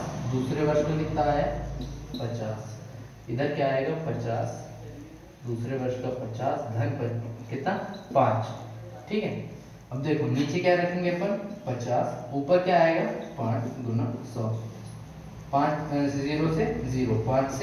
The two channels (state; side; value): identical; both; correlation 1.00